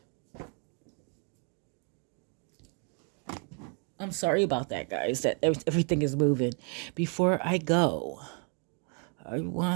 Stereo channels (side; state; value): left; quieter; 39.1 dB